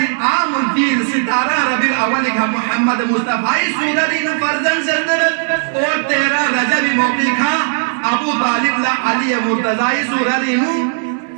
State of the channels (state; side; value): silent; left; digital silence